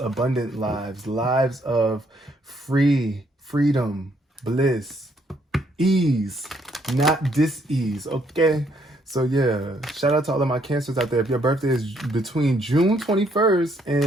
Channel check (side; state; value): both; normal; correlation 0.70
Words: lives, lives of freedom, bliss, ease, not dis-ease. Okay. So yeah, shout out to all of my Cancers out there. If your birthday is between June 21st